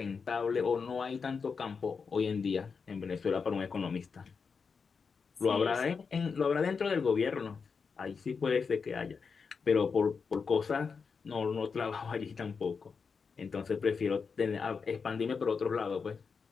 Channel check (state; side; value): quieter; right; 5.4 dB